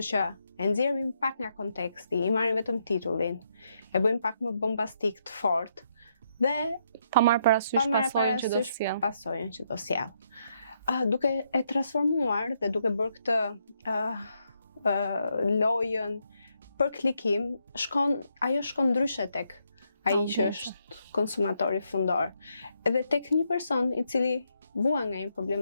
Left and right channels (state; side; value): inverted; both; correlation -0.77